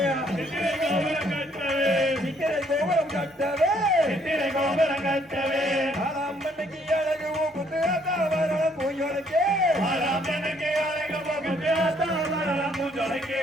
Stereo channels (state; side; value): normal; both; correlation 0.66